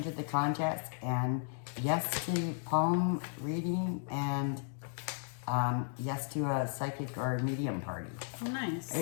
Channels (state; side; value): silent; right; 55 dB below the other